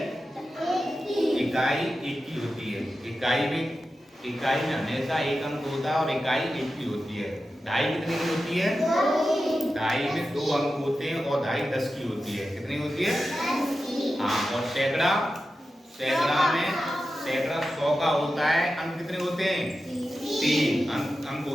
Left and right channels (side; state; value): both; normal; correlation 0.92